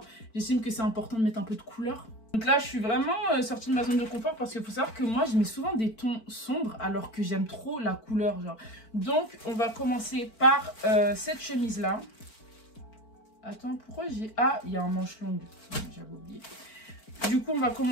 j'estime que c'est important de mettre un peu de couleur. Donc là, je suis vraiment sortie de ma zone de confort parce qu'il faut savoir que moi, je mets souvent des tons sombres alors que j'aime trop la couleur, genre. Donc, on va commencer par cette chemise-là. Attends, pourquoi j'ai... Ah, il y a un manche longue. J'avais oublié. Du coup, on va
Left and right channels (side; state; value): right; late; 4.5 ms